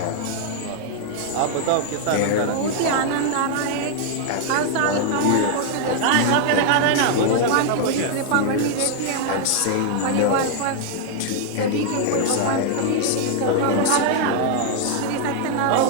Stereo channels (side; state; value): both; different; correlation 0.00